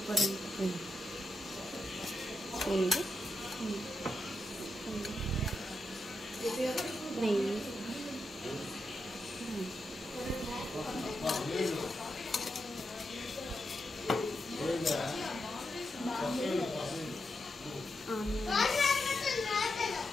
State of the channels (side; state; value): both; normal; correlation 0.85